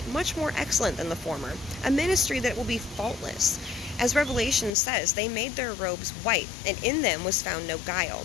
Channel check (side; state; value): right; drops out; at 4.8 s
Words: much more excellent than the former, a ministry that will be faultless. As Revelation says, they made their robes white, and in them was found no